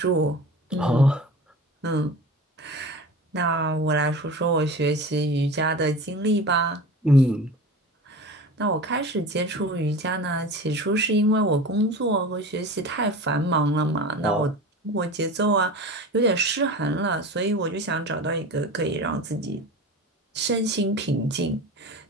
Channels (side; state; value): both; normal; correlation 0.33